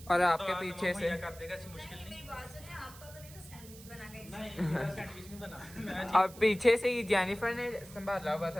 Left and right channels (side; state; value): right; noise; hiss, 18 dB below the sound